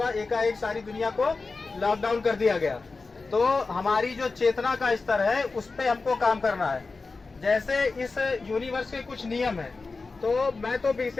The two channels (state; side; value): quieter; right; 4.0 dB